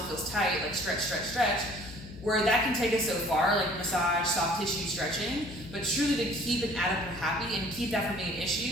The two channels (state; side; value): noise; left; hum, 15 dB below the sound